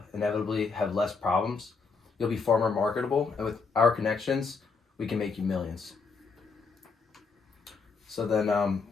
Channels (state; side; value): quieter; right; 4.8 dB